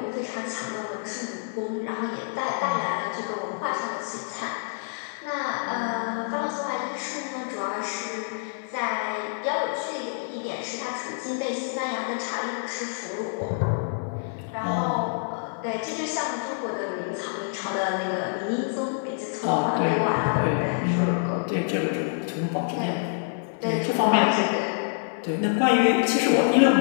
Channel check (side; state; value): right; silent; digital silence